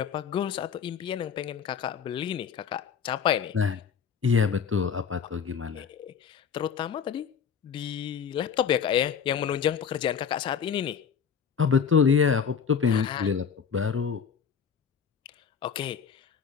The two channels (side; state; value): right; quieter; 7.0 dB